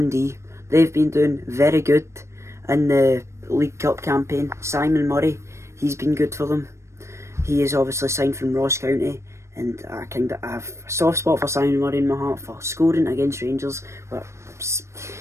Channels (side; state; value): left; late; 0.13 ms